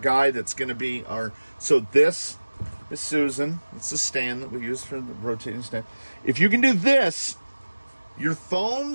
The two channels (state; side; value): inverted; both; correlation -1.00